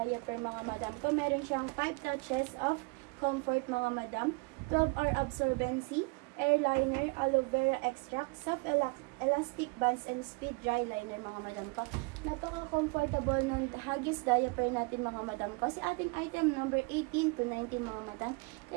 mga madam ko. Meron siyang 5 touches of comfort mga madam, 12-hour absorbency, airliner, aloe vera extract, soft elastic bands, and speed dry liner mga madam ko. Napaka-comfortable ng Huggies diaper natin mga madam ko. Si ating item number 18 to 19 mga madam.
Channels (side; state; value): left; quieter; 29.4 dB